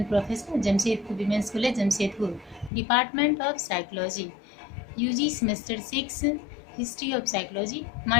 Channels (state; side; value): drops out; right; at 2.7 s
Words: Professor, Jamshedpur Women's College, Jamshedpur, Department of Psychology, UG Semester 6, History of Psychology.